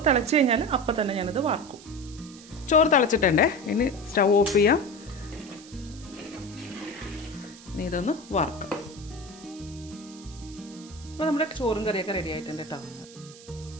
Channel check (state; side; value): noise; right; hiss, 19 dB below the sound